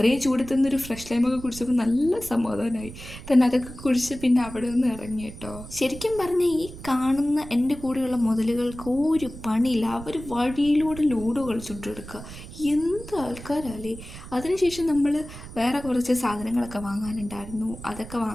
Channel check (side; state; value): right; noise; rumble, 14 dB below the sound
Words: ചൂടത്തുനിന്നൊരു ഫ്രഷ് ലൈമൊക്കെ കുടിച്ചപ്പോൾ നല്ല സമാധാനമായി. തന്നെ അതൊക്കെ കുടിച്ച് പിന്നെ അവിടെ നിന്ന് ഇറങ്ങി കേട്ടോ. ശരിക്കും പറഞ്ഞാൽ ഈ കാണുന്ന എൻ്റെ കൂടെയുള്ള മുതലുകൾക്ക് ഒരു പണിയില്ല. അവർ വഴിയിലൂടെ ലൂഡോ കളിച്ചുകൊണ്ട് എടുക്കുക. എന്ത് ആൾക്കാരല്ലേ. അതിനുശേഷം നമ്മൾ വേറെ കുറച്ച് സാധനങ്ങളൊക്കെ വാങ്ങാനുണ്ടായിരുന്നു, അതൊക്കെ